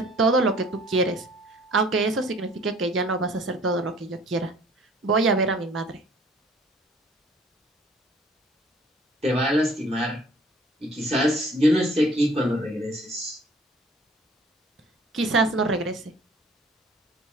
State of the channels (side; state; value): both; normal; correlation 0.54